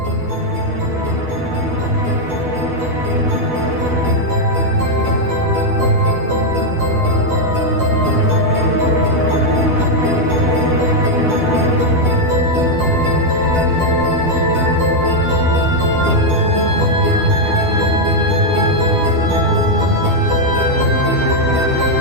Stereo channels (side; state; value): left; late; 12 ms